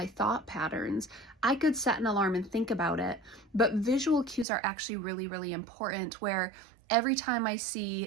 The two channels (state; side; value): drops out; left; at 4.5 s